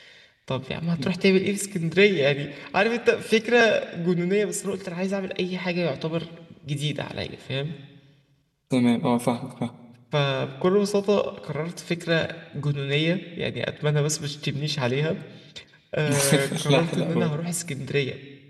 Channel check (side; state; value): both; identical; correlation 1.00